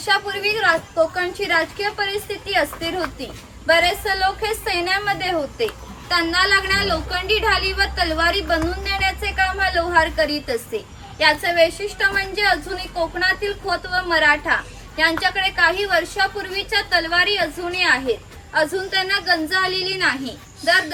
कोकणची राजकीय परिस्थिती अस्थिर होती. बरेचसे लोक हे सैन्यामध्ये होते. त्यांना लागणाऱ्या लोखंडी ढाली व तलवारी बनवून देण्याचे काम हा लोहार करीत असे. याचे वैशिष्ट्य म्हणजे अजूनही कोकणातील खोत व मराठा यांच्याकडे काही वर्षापूर्वीच्या तलवारी अजूनही आहेत. अजून त्यांना गंज आलेली नाही. दर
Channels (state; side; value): identical; both; correlation 1.00